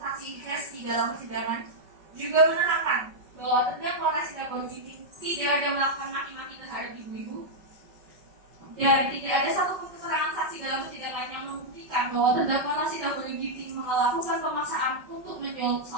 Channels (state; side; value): late; left; 5.3 ms